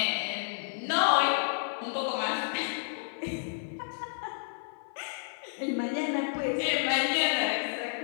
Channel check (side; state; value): right; silent; 57 dB below the other